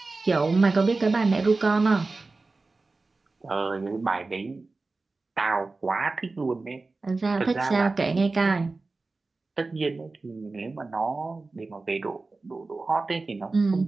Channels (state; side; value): quieter; left; 3.6 dB